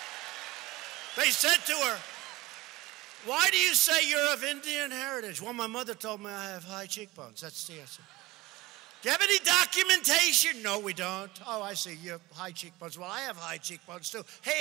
They said to her, why do you say you're of Indian heritage? Well, my mother told me I have high cheekbones. That's the answer. Do you have any documentation? No, we don't. Oh, I see, you have high cheekbones. Well, I have high cheekbones too.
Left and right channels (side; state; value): left; quieter; 19.4 dB